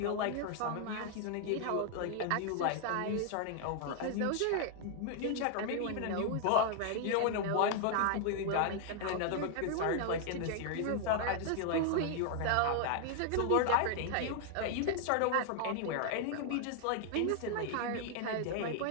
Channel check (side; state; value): both; different; correlation 0.00